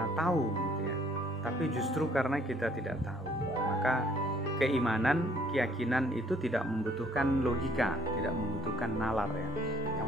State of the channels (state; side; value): normal; both; correlation 0.62